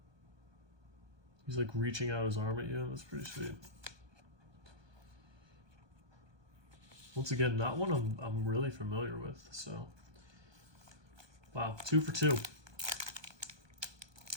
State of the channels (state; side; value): late; left; 1.2 ms